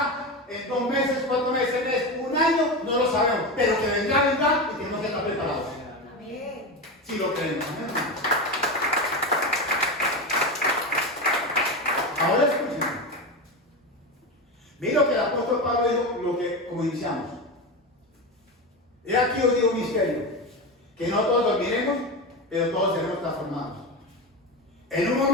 En 2 meses, 4 meses, 1 año, no lo sabemos. Pero que vendrá y tenemos que estar preparados. Amén. Si lo creemos. Ahora escuchen. Mira lo que el apóstol Pablo dijo, como iniciamos. He aquí os digo un misterio, que no todos dormiremos, pero todos seremos transformados. En un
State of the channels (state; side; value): normal; both; correlation 0.20